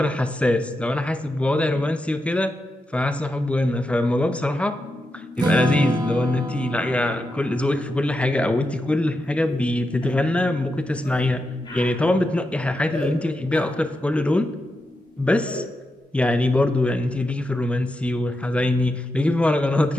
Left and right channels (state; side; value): normal; both; correlation 0.87